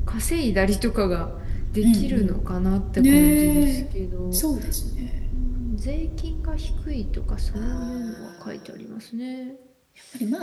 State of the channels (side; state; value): both; identical; correlation 1.00